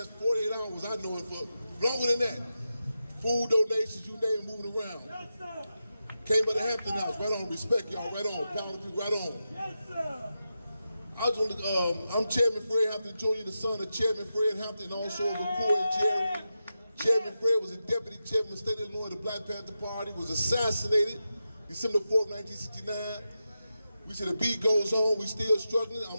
48 hours, I know it, for longer than that. Food donations, you name it, moving around. Yes, sir. Came by the Hampton House, right on, respect y'all, right on, power to people, right on. Yes, sir. I'm Chairman Fred Hampton Jr., the son of Chairman Fred Hampton, and also of McCoy and Jerry. Chairman Fred was a deputy chairman of the state of Illinois of the Black Panther Party, was assassinated December 4th, 1969. We said the beat goes on, we still struggling,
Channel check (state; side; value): inverted; both; correlation -0.90